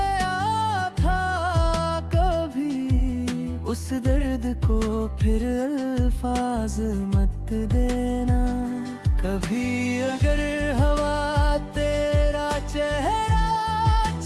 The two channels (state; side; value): identical; both; correlation 1.00